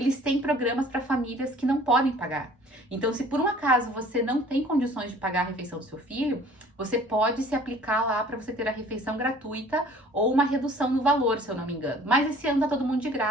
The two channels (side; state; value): both; normal; correlation 0.51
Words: têm programas para famílias que não podem pagar. Então, se por um acaso você não tem condições de pagar a refeição do seu filho, você pode se aplicar lá para você ter a refeição gratuita ou uma redução no valor, se eu não me engano. Mas esse ano tá todo mundo de